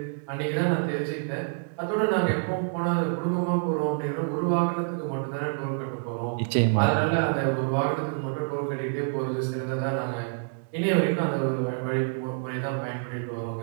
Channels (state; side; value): silent; left; digital silence